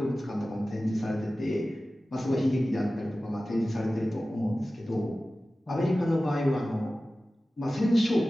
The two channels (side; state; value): both; normal; correlation 0.96